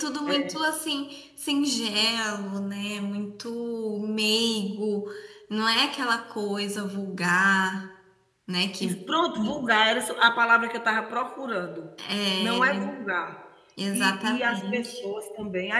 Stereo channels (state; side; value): identical; both; correlation 1.00